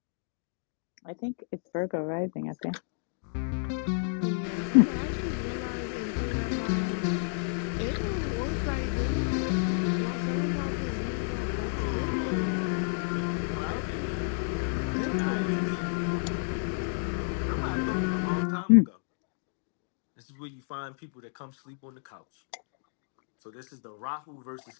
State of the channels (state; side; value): silent; right; digital silence